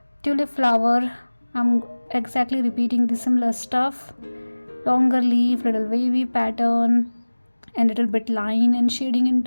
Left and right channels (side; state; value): both; inverted; correlation -1.00